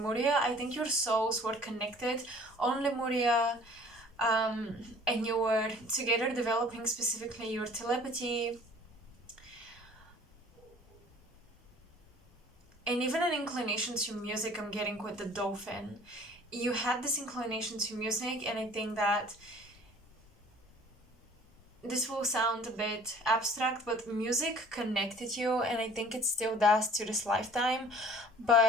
I think your souls were connected on Lemuria, and you were together developing specifically your telepathy and even an inclination to music. I'm getting with the dolphin. You had this inclination to music, and I think that this will sound a bit abstract, but music connected you, and I think it still does to this lifetime.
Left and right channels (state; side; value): normal; both; correlation 0.50